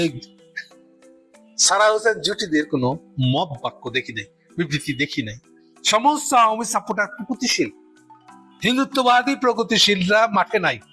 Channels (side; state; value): both; identical; correlation 1.00